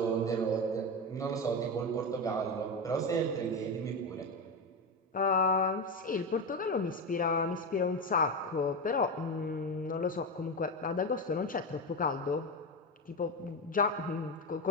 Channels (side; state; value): both; normal; correlation 0.16